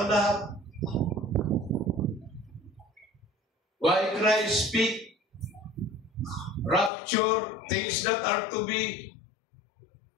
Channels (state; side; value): drops out; right; at 6.9 s